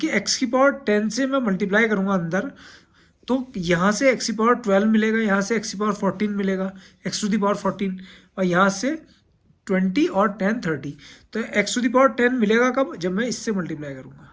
x की पावर 10 से मैं मल्टीप्लाई करूंगा अंदर, तो यहाँ से x की पावर 12 मिलेगा, यहाँ से x की पावर 14 मिलेगा, x टू दी पावर 14, और यहाँ से 20 और 10 30। तो x टू दी पावर 10 मिलेगा कब? जब मैं इससे मल्टीप्लाई करूंगा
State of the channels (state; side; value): identical; both; correlation 1.00